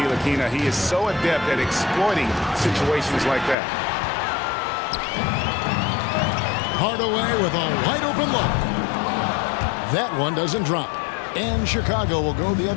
He is so adept at exploiting situations like that. Hardaway with a wide open look. That one doesn't drop. And Chicago will go the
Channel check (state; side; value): drops out; right; at 3.6 s